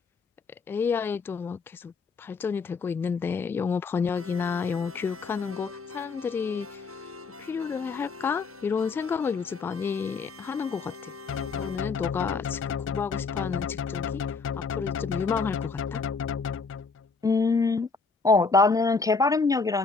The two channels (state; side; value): quieter; right; 4.6 dB